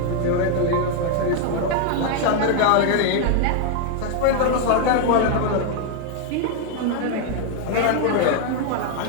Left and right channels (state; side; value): different; both; correlation 0.00